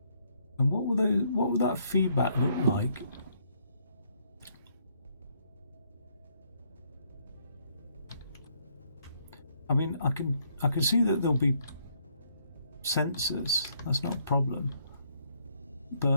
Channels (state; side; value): inverted; both; correlation -0.70